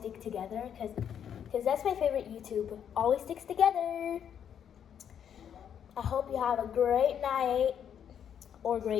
together because that's my favorite YouTube. Always sticks together. I hope you have a great night or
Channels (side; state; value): right; quieter; 8.7 dB